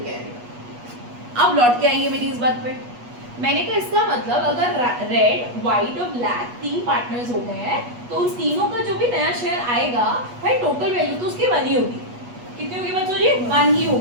के आएगा। अब लौट के आइए मेरी इस बात पे। मैंने कहा इसका मतलब अगर रेड, व्हाइट और ब्लैक 3 पार्टनर्स हो गए हैं तो उन तीनों का जो भी नया शेयर आएगा भाई टोटल वैल्यू तो उसकी 1 ही होगी। कितनी होगी बच्चों जी? 1 ही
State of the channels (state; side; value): late; left; 8.3 ms